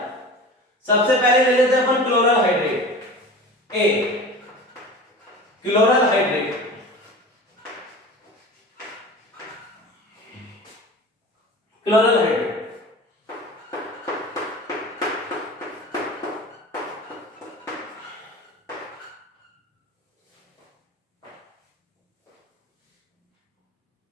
सबसे पहले ले लेते हैं अपन क्लोरल हाइड्रेट ए, क्लोरल हाइड्रेट, क्लोरल हाइड्रेट।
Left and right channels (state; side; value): normal; both; correlation 0.36